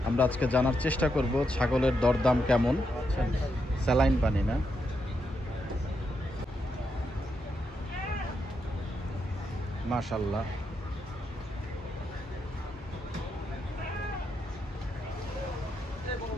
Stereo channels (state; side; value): normal; both; correlation 0.82